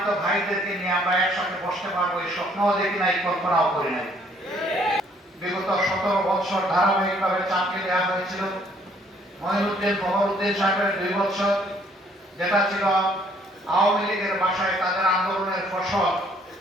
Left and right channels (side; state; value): both; normal; correlation 0.63